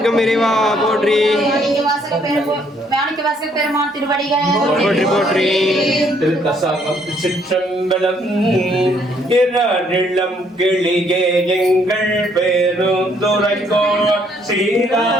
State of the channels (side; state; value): both; normal; correlation 0.67